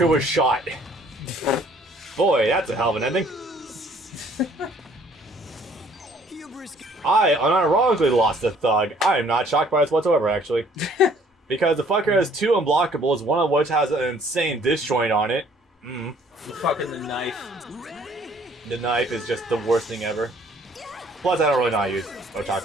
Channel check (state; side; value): normal; both; correlation 0.59